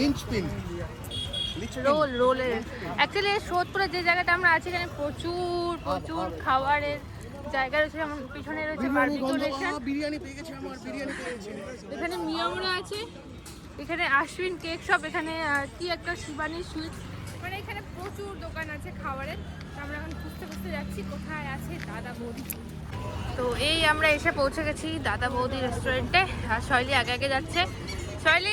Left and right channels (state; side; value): identical; both; correlation 1.00